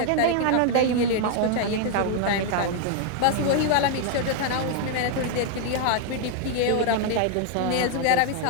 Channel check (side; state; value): both; different; correlation 0.00